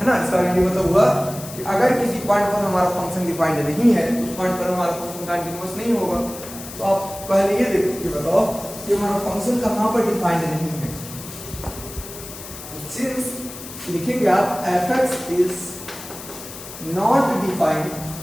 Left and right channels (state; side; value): noise; left; hiss, 13 dB below the sound